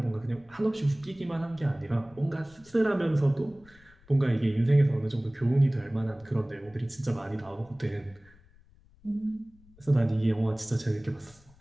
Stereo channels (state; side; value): noise; left; rumble, 27 dB below the sound